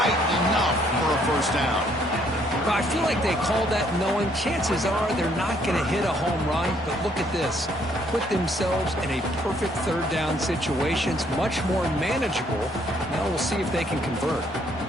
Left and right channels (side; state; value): both; normal; correlation 0.67